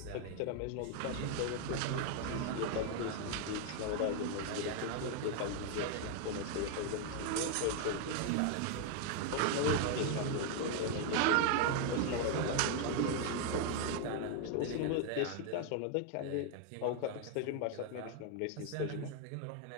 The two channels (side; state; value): both; different; correlation 0.00